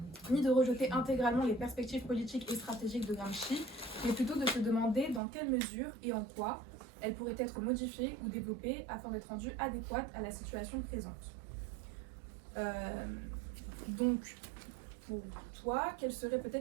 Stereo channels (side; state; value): left; drops out; at 5.2 s